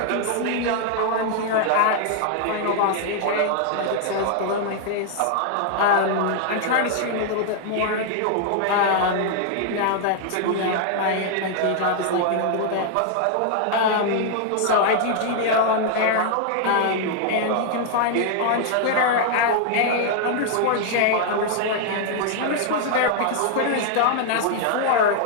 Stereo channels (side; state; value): both; different; correlation 0.00